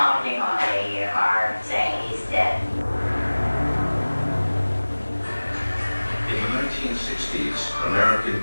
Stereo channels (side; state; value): both; inverted; correlation -1.00